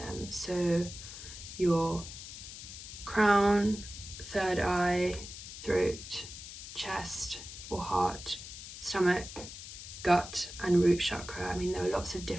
So your crown, third eye, throat, chest or heart, stomach, gut and root chakra. I mean, there are lots of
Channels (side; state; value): left; noise; hiss, 12 dB below the sound